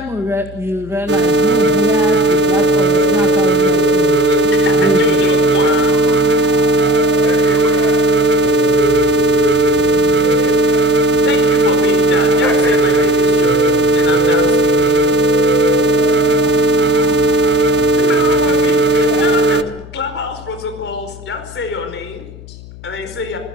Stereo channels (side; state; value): left; noise; hum, 18 dB below the sound